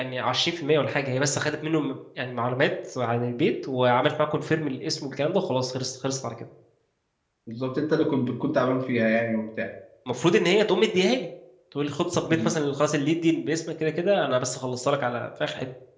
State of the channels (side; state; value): both; identical; correlation 1.00